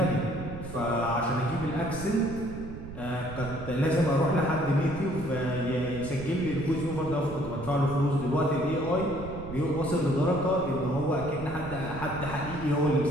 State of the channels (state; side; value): noise; right; rumble, 11 dB below the sound